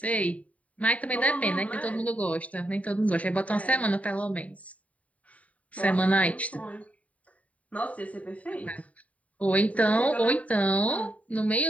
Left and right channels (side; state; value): right; late; 0.068 ms